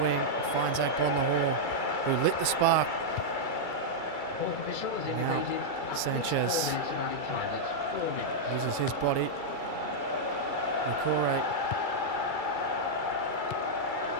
wing and finds Agbonlahor, who lit the spark. Now Sanchez uses his body. Nakore.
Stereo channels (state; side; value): late; right; 2.3 ms